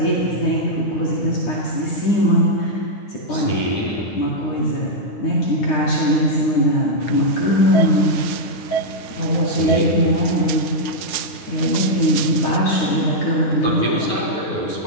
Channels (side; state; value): right; late; 9.2 ms